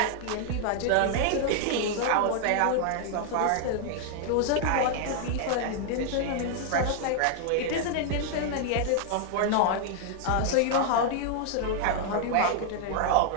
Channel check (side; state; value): both; different; correlation 0.00